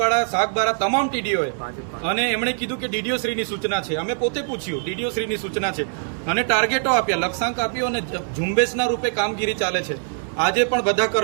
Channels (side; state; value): left; silent; digital silence